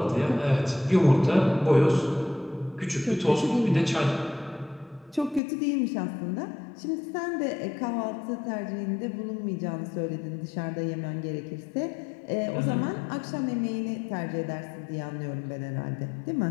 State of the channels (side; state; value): right; drops out; at 5.4 s